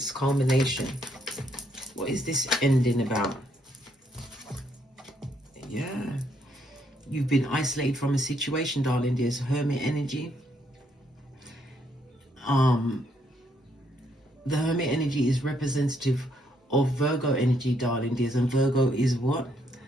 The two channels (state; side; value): normal; both; correlation 0.73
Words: culmination. What is this ending about? Yeah. You've been isolated from a situation, darling dears. Hermit energy. The Hermit energy is representative of Virgo energy, darling dears. And Virgo is what?